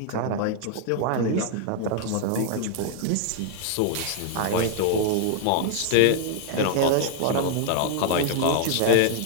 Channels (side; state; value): both; different; correlation -0.01